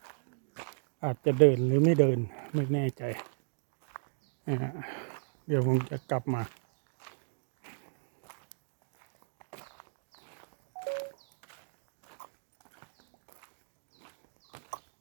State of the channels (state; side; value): silent; left; digital silence